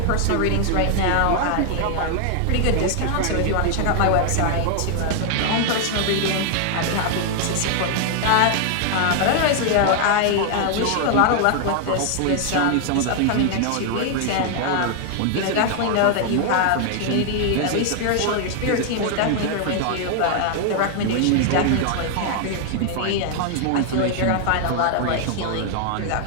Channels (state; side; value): different; both; correlation 0.00